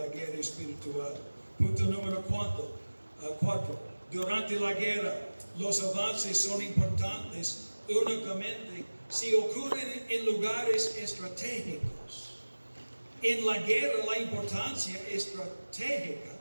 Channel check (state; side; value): inverted; both; correlation -1.00